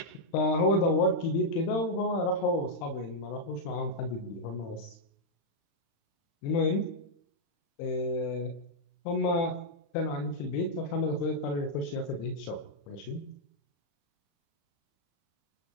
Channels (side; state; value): right; late; 36 ms